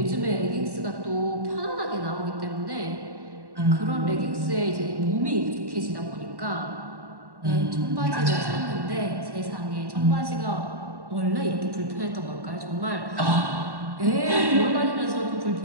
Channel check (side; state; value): left; late; 1.1 ms